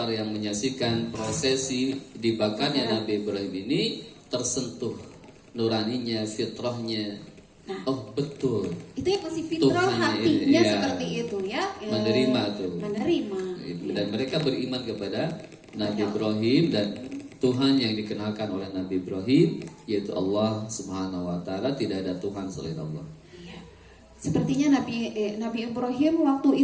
yang menyaksikan prosesi dibakarnya Nabi Ibrahim ini tersentuh nuraninya, fitrahnya. Oh betul. Itu yang masih fitrah Tuhan, hatinya iya. seperti itu ya. Menerima tuh. Menerima. Dan mereka beriman kepada Nabi Ibrahim, dan Tuhan yang dikenalkan oleh Nabi Ibrahim yaitu Allah Subhanahu wa taala, tidak ada Tuhan selain Allah. Iya. Sepertinya Nabi Ibrahim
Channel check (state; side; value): identical; both; correlation 1.00